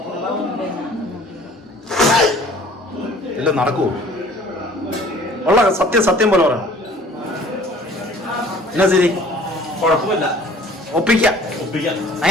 ഇല്ല നടക്കൂ. ഉള്ള സത്യം പോലെ പറയണം. എന്നാ ശരി കുഴപ്പമില്ല. ഒപ്പിക്കാം.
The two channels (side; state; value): both; normal; correlation 0.52